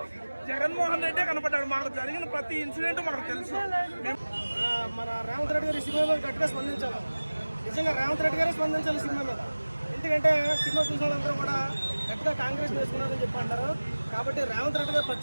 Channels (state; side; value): inverted; both; correlation -1.00